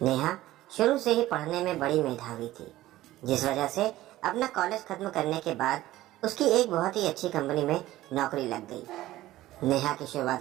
नेहा शुरू से ही पढ़ने में बड़ी मेधावी थी, जिस वजह से अपना कॉलेज खत्म करने के बाद उसकी एक बहुत ही अच्छी कंपनी में नौकरी लग गई। नेहा की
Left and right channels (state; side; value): quieter; left; 15.7 dB